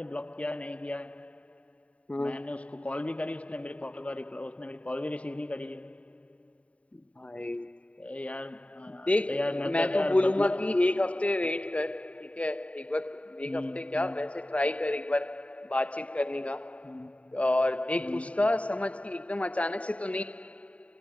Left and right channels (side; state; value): right; late; 0.066 ms